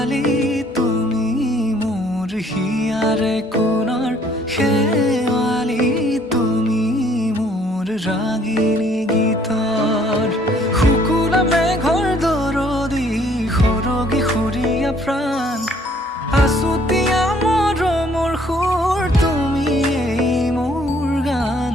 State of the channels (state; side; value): normal; both; correlation 0.61